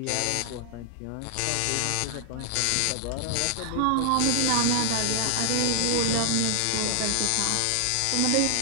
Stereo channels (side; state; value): both; different; correlation 0.00